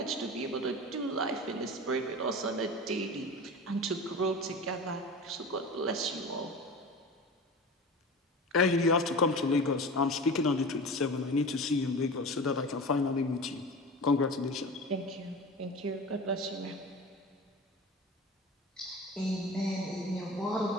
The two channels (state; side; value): normal; both; correlation 0.33